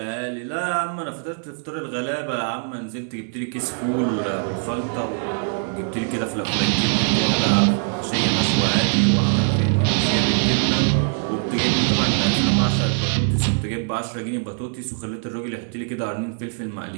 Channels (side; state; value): left; silent; 61 dB below the other